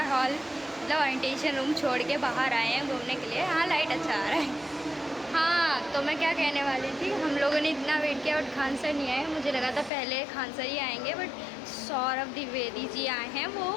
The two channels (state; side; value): drops out; right; at 9.9 s